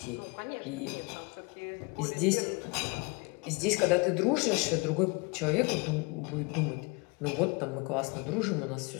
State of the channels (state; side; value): quieter; right; 28.6 dB